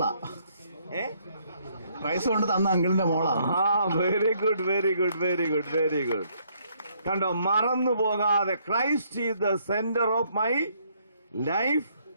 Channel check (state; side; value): inverted; both; correlation -0.69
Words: പ്രൈസ് കൊണ്ട് തന്ന അങ്കിളിന്റെ മോളാ. Very good, very good, very good, very good. കണ്ടോ, മറന്നു പോകാതെ Christ is the centre of my life,